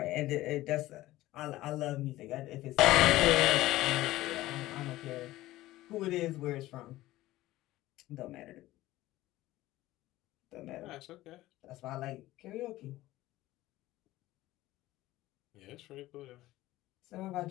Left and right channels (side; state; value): right; quieter; 16.6 dB